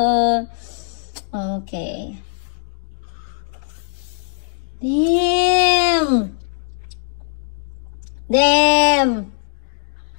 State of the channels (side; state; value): right; silent; digital silence